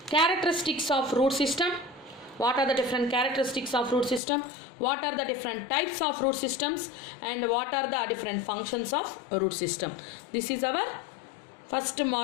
Characteristics of root system. What are the different characteristics of root system? What are the different types of root systems? And what are the different functions of root system? This is our first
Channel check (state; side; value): drops out; right; at 4.2 s